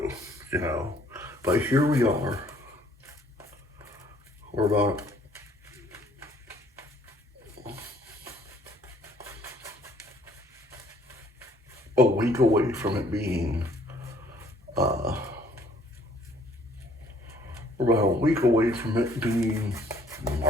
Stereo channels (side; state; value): both; normal; correlation 0.60